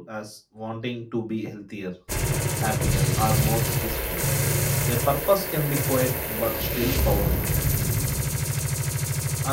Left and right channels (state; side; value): identical; both; correlation 1.00